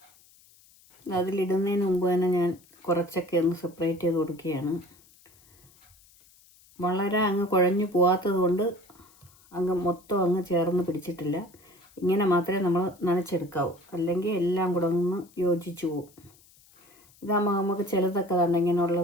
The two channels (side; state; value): left; noise; hiss, 28 dB below the sound